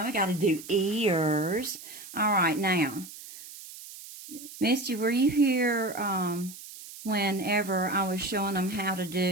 I got to do ears. All right, now, Misty, were you here whenever I was showing them how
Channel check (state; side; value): noise; right; hiss, 15 dB below the sound